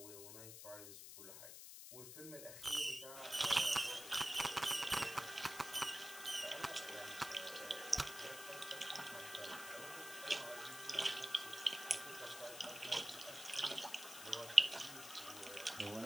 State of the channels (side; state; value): left; noise; hiss, 11 dB below the sound